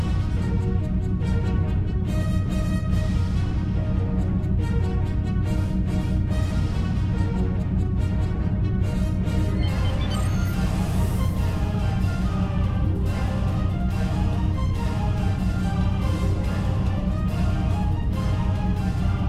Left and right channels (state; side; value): identical; both; correlation 1.00